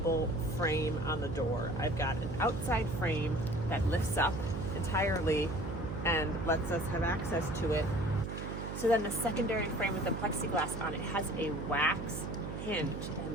frame on the door. I've got an outside frame that lifts up entirely and lets us have access to it. So then the secondary frame with the plexiglass on it has a wax hinge,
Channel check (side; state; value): right; noise; hum, 6 dB below the sound